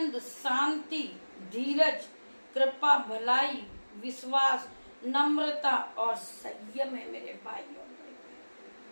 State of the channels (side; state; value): both; inverted; correlation -1.00